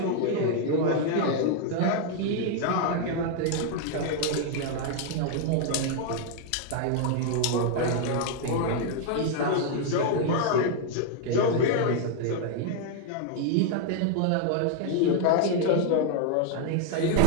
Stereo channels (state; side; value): different; both; correlation 0.00